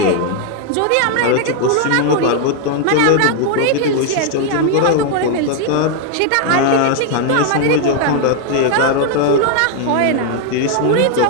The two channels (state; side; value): different; both; correlation 0.00